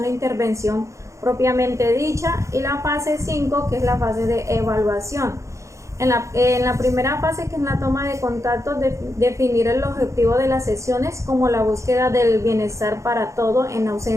e intervención propiamente dicha, y la fase 5, que es la fase de evaluación. En la primera fase, que es la toma de contacto, definir el objetivo de las sesiones como la búsqueda del bienestar para todo en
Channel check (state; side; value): late; left; 0.15 ms